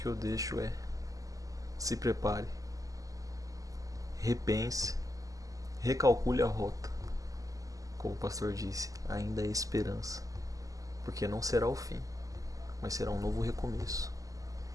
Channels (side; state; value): left; late; 0.17 ms